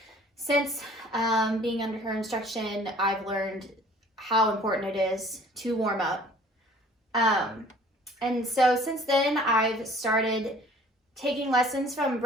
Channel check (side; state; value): both; normal; correlation 0.52